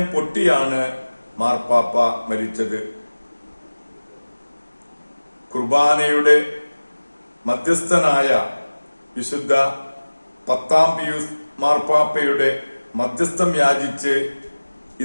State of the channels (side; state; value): both; inverted; correlation -1.00